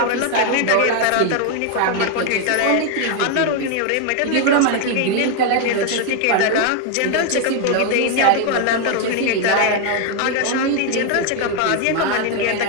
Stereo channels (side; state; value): both; different; correlation 0.01